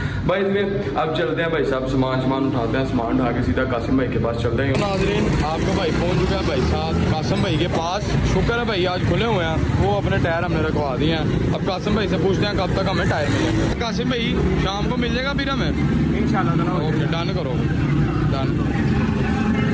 भाई इसमें। अब चलते हैं भाई साहब, सामान उठाते हैं, सामान उठा के सीधा कासिम भाई के पास चलते हैं। नाज़रीन आपका भाई पहुंच चुका है भाई साहब कासिम भाई के पास। शुक्र है भाई आज खुले हुए हैं, वो अपने टायर हमने रखवा दिए हैं। अब कासिम भाई से पूछते हैं कब तक हमें टायर मिलेगा। कासिम भाई शाम को मिल जाएगा फिर हमें इंशाल्लाह। ओके डन करो, डन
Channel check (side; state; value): both; identical; correlation 1.00